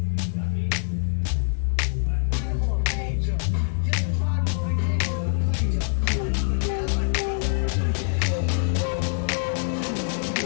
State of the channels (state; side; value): silent; right; 62 dB below the other